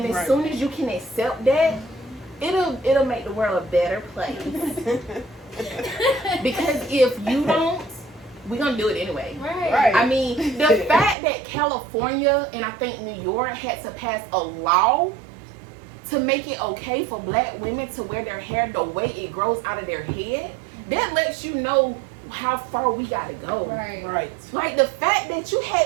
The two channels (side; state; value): left; drops out; at 11.2 s